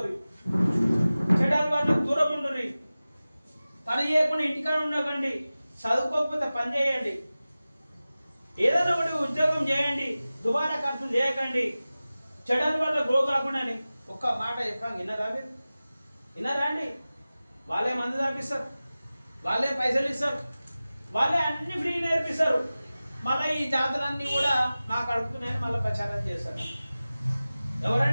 చెడాలి వాళ్ళకు దూరం ఉండరు, పని చేయకుండా ఇంటికాడ ఉండకండి, చదువుకోకపోతే పని చేయండి, ఏదైనా ఒకటి ఉద్యోగం చేయండి, దుబారా ఖర్చులు చేయకండి, చెడాలి వల్ల గ్రో కాకుండా అని ఒక్క మాట చెప్పాక విన్నారా మీరు? విన్నారా అండి? వాళ్ళే మందు తాపిస్తారు, వాళ్ళే పైసలు ఇస్తారు, వాళ్ళే అన్ని ఫ్రీ నేర్పిస్తారు. మళ్ళీ ఈ జాతరన్నీ కూడా నాకు అడుగుతున్నాయని మళ్ళీ ప్రచారం చేస్తారు.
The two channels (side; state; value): both; inverted; correlation -0.97